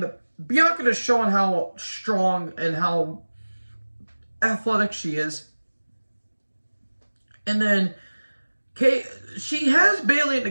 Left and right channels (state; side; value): inverted; both; correlation -1.00